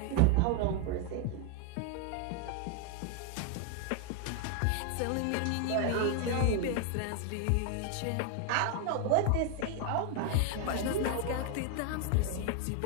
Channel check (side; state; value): both; different; correlation 0.00